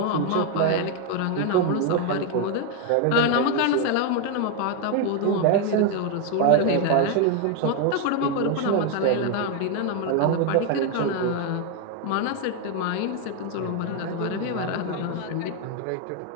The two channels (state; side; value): different; both; correlation 0.01